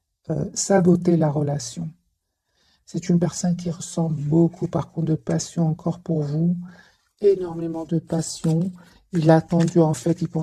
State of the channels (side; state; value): both; identical; correlation 1.00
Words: saboté la relation. C'est une personne qui ressent beaucoup, par contre, de passion encore pour vous, énormément de passion. Il a attendu, en fait, il